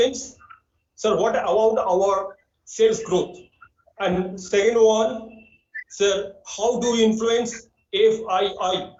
sir, what about our sales growth? And second one, sir, how do we influence FII?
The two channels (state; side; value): identical; both; correlation 1.00